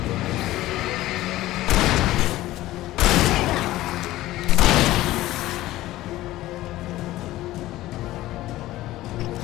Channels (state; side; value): quieter; right; 16.2 dB